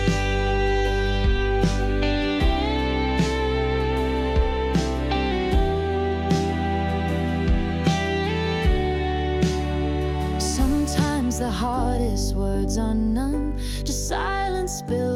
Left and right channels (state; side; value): identical; both; correlation 1.00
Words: The hardest words are none, just silence